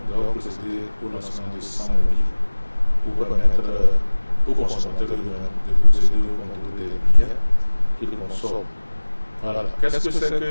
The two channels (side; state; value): both; inverted; correlation -1.00